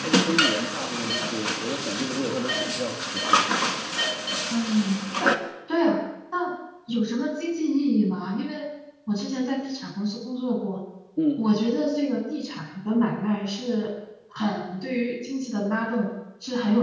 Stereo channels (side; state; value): both; identical; correlation 1.00